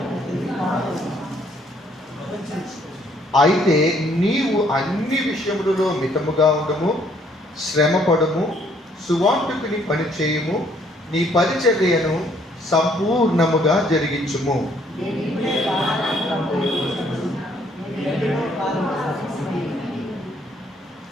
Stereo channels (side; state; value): both; normal; correlation 0.65